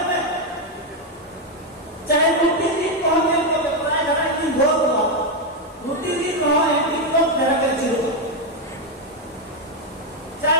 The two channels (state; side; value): normal; both; correlation 0.04